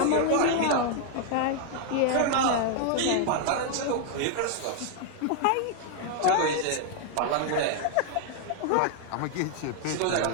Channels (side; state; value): both; different; correlation 0.00